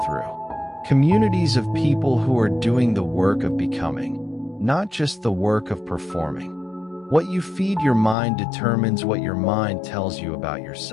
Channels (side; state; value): right; drops out; at 8.2 s